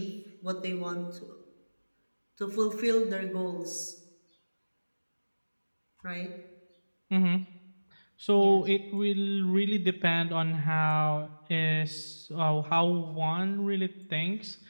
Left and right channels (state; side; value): inverted; both; correlation -1.00